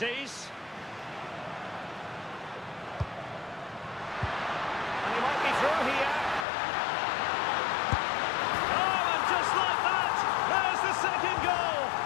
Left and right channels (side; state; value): right; drops out; at 6.5 s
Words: And he might be through here. Oh, and just like that, there's the second goal.